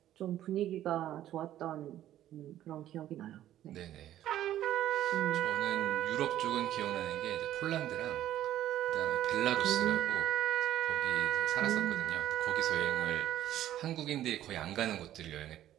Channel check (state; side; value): quieter; left; 12.5 dB